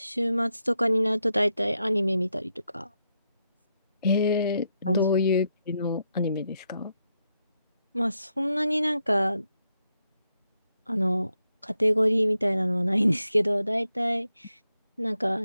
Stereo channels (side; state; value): both; inverted; correlation -0.82